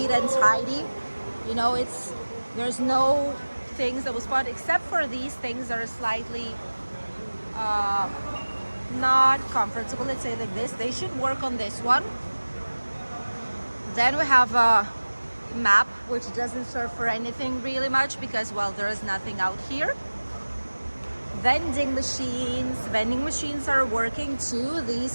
and tidy. You know, there's no things that will spot except for these things that are slightly not comfortable. Let's say like this. They should work on this one. Then we have a map, which doesn't serve for anything really much because, well, there is nothing out here. Vending machines are working too. These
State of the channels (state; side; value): inverted; both; correlation -1.00